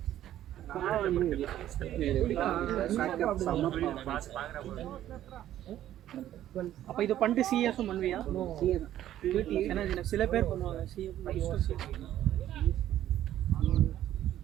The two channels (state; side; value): quieter; left; 12.3 dB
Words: அப்ப இது பண்ணிட்டு சிஎஸும் பண்ணுவியா? ஏன்னா சில பேர் பண்ணுவாங்க சிஏ